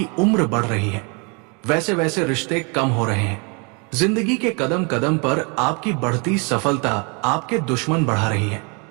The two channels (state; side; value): quieter; left; 33.3 dB